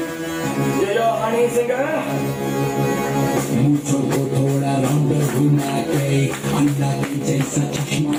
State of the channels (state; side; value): identical; both; correlation 1.00